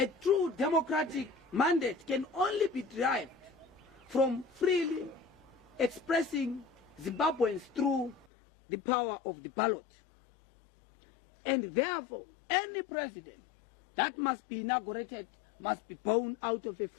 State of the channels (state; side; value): drops out; right; at 8.2 s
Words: true democratic mandate can only be derived from freely expressing Zimbabweans through the power of the ballot. And therefore, any president that must be inaugurated must be born out of a